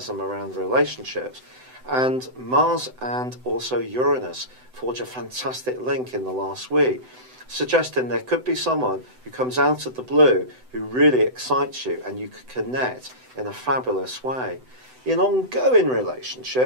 around relationships. And Mars and also Uranus forge a fantastic link in the last week, suggesting there could be someone who comes out of the blue who really excites you and you could connect in a fabulous way. In ongoing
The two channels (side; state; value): left; late; 7.9 ms